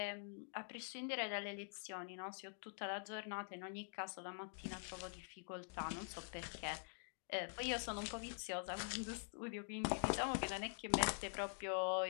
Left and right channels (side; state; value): right; silent; digital silence